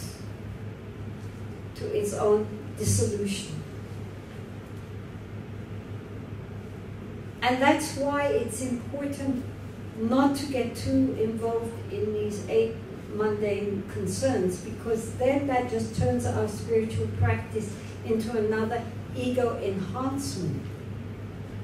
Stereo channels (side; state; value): both; identical; correlation 1.00